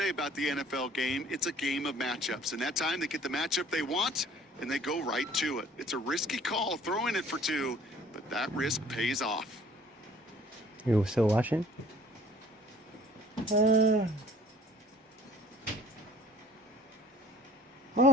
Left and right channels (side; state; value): both; normal; correlation 0.53